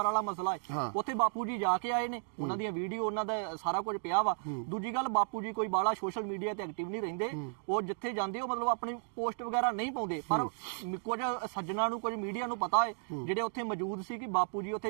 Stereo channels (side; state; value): left; silent; digital silence